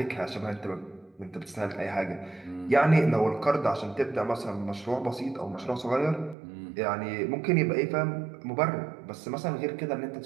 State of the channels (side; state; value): left; drops out; at 6.4 s